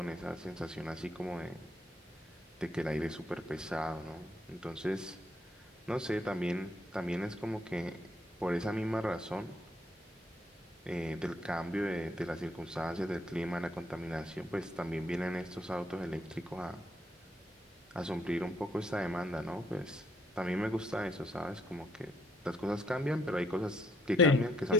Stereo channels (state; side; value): normal; both; correlation 0.71